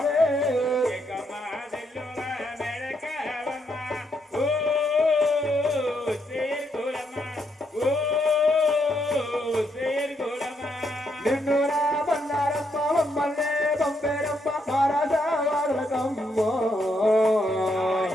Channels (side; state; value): both; normal; correlation 0.77